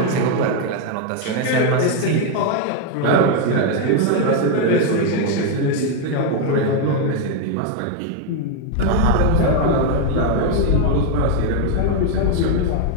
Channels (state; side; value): different; both; correlation 0.01